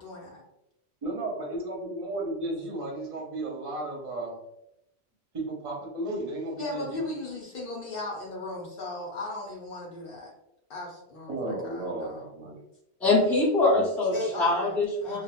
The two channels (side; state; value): both; normal; correlation 0.10